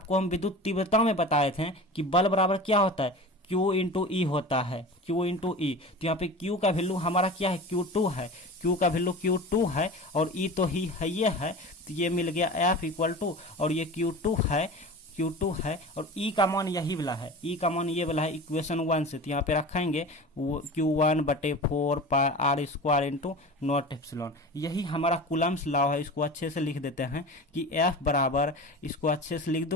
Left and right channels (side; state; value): both; normal; correlation 0.34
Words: हम विद्युत तीव्रता में बताए थे कि बल बराबर क्या होता है, Q इंटू ई होता है, Q इंटू ई। तो यहाँ पे Q का वैल्यू हमारा क्या है, Q2 है, Q का वैल्यू Q2 है और E तो ही है, ये है, तो ये मिल गया F इक्वल टू, और ये Q2 है और E का मान यही वाला है, E का मान ये वाला है इक्वेशन 1 से। तो यहाँ पे रखेंगे Q1/4πr² इंटू नॉट एप्सिलॉन। यही हमारा कूलम्स लॉ है। इसको अच्छे से लिख देते हैं कि F बराबर, इसको अच्छे से लिख